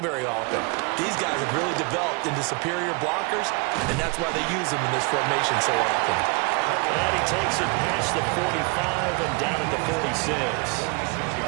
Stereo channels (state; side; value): quieter; left; 30.1 dB